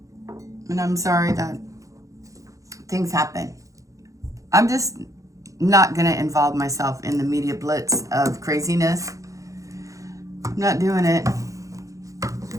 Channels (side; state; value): left; late; 0.16 ms